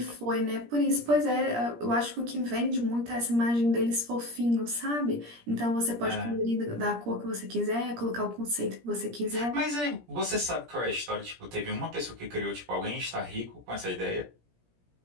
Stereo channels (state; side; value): late; left; 17 ms